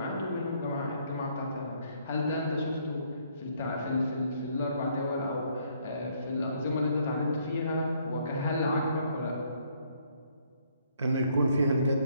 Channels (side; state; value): both; inverted; correlation -0.68